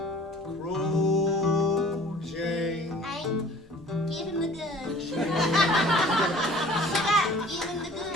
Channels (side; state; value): both; normal; correlation 0.49